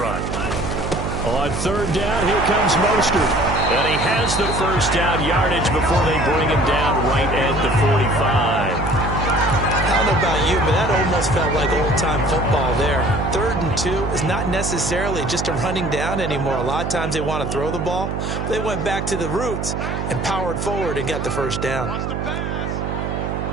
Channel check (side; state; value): right; noise; hum, 3 dB below the sound